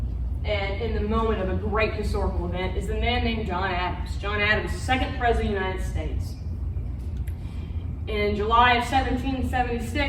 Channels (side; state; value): both; identical; correlation 1.00